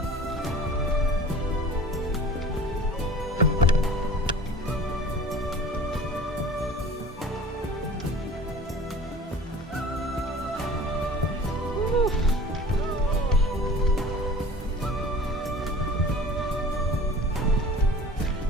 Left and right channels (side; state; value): both; normal; correlation 0.42